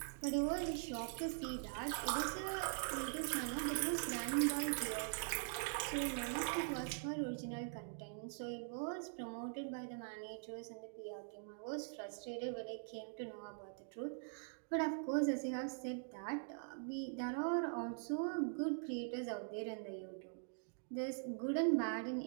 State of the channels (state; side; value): silent; left; digital silence